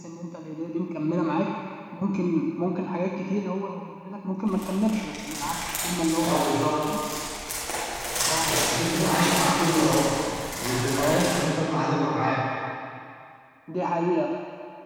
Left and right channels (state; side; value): identical; both; correlation 1.00